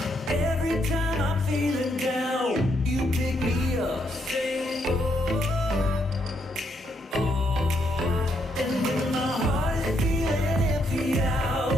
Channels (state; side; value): normal; both; correlation 0.76